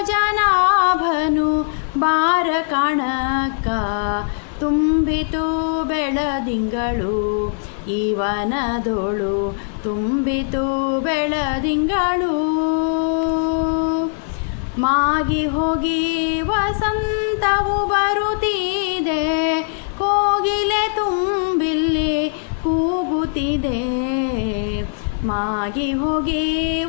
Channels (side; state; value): right; silent; 58 dB below the other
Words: ಬಾರ ಕಾಣಕ್ಕ, ತುಂಬಿತು ಬೆಳದಿಂಗಳು ಈ ವನದೋಳು, ತುಂಬಿತು ಬೆಳದಿಂಗಳು. ಮಾಗಿ ಹೋಗಿ ವಸಂತವು ಬರುತ್ತಿದೆ, ಕೋಗಿಲೆ ತುಂಬಿಲ್ಲಿ ಕೂಗುತ್ತಿದೆ. ಮಾಗಿ ಹೋಗಿ